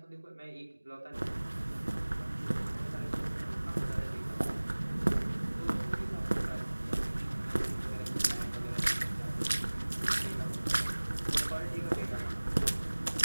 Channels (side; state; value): both; inverted; correlation -1.00